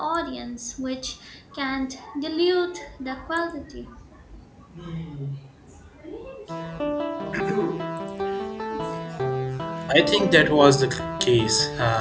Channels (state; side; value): identical; both; correlation 1.00